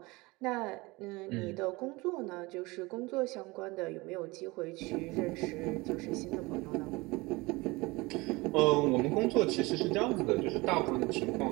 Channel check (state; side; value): quieter; left; 23.2 dB